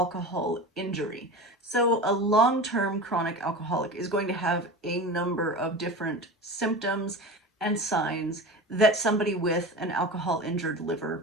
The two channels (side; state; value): both; normal; correlation 0.30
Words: injury. So a long-term chronic alcoholic is going to have a number of different symptoms and signs that somebody with an alcohol injured